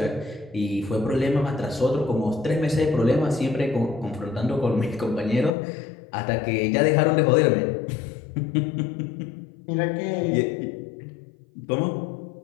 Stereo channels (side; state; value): right; drops out; at 5.5 s